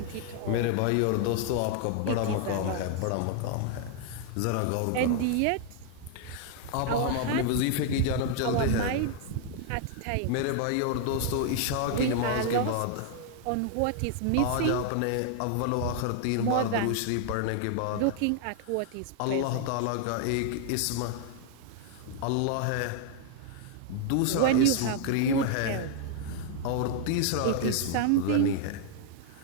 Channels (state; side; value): different; both; correlation 0.00